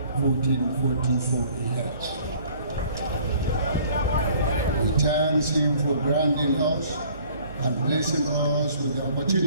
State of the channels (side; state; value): both; inverted; correlation -0.54